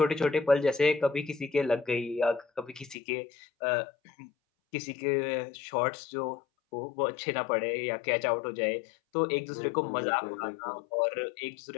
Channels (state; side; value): drops out; right; at 3.0 s